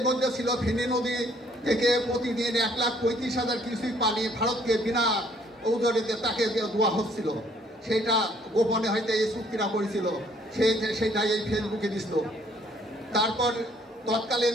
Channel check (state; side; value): normal; both; correlation 0.63